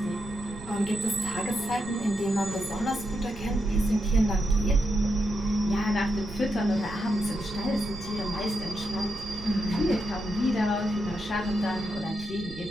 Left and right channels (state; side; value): noise; right; rumble, 15 dB below the sound